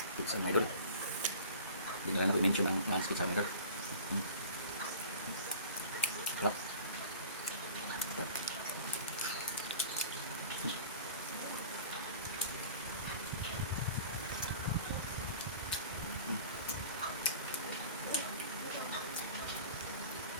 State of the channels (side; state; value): both; inverted; correlation -0.41